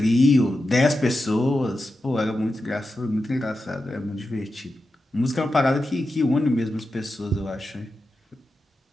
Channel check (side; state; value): both; normal; correlation 0.90